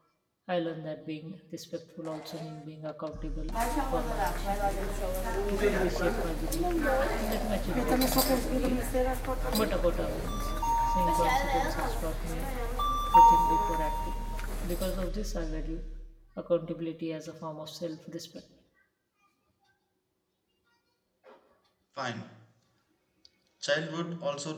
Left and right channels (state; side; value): identical; both; correlation 1.00